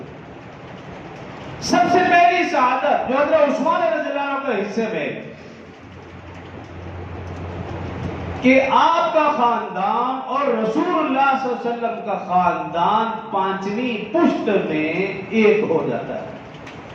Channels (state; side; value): identical; both; correlation 1.00